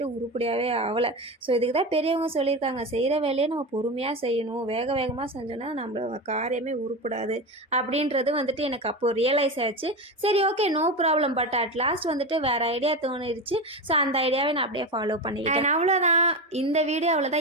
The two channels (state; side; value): normal; both; correlation 0.20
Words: உருப்படியாகவே ஆகலை. ஸோ இதுக்கு தான் பெரியவங்க சொல்லியிருக்காங்க, செய்கிற வேலையை நம்ம பொறுமையாக செய்யணும், வேக வேகமாக செஞ்சோன்னா நம்மளோட காரியமே உருப்படாது அப்படின்றது வந்துட்டு எனக்கு அப்போது ரியலைஸ் ஆச்சு. சரி okay no problem. But at last வந்துட்டு வேறு ஐடியா தோணிடுச்சு. ஸோ அந்த ஐடியாவை நான் அப்படியே ஃபாலோ பண்ணிக்கிட்டேன். அவ்வளோதான், இந்த வீடியோ